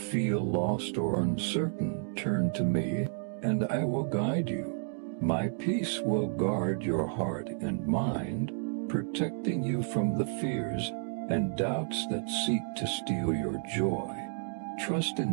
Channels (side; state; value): left; silent; digital silence